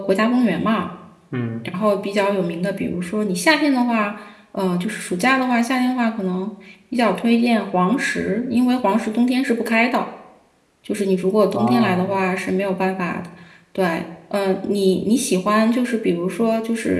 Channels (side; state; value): both; identical; correlation 1.00